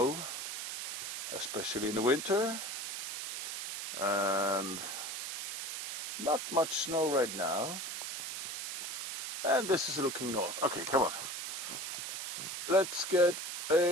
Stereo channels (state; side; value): noise; right; hiss, 4 dB below the sound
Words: especially in the winter. And not much snow right now. And this is looking north. Okay, come on. Let's get